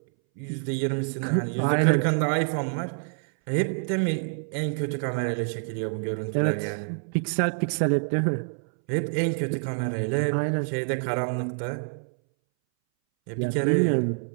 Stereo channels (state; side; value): silent; left; 60 dB below the other